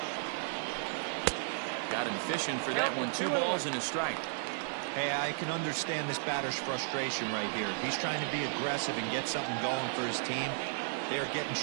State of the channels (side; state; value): left; silent; 55 dB below the other